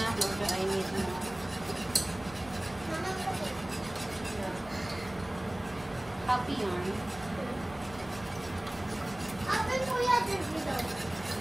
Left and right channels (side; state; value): right; noise; rumble, 18 dB below the sound